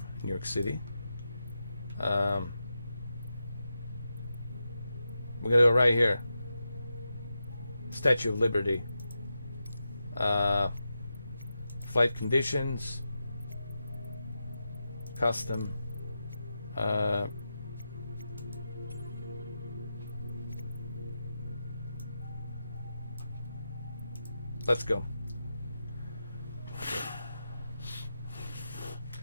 New York City. We're gonna go right here. Statue of Liberty. Flight conditions. Custom. Let's go.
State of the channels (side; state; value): both; inverted; correlation -0.89